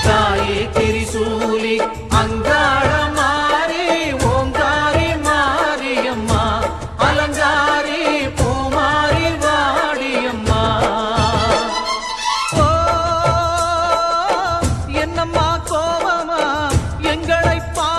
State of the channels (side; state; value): both; identical; correlation 1.00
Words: தாயே திரிசூலி அங்காள மாறி ஓங்காரி மாரியம்மா அலங்காரி பூமாரி வாடியம்மா ஓ என்னம்மா கோவமா எங்களை